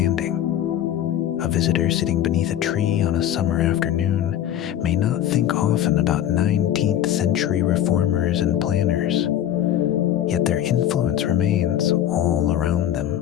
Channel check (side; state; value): right; quieter; 11.1 dB